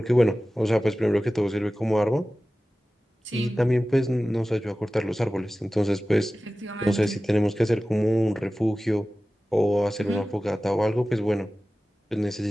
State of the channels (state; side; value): normal; both; correlation 0.96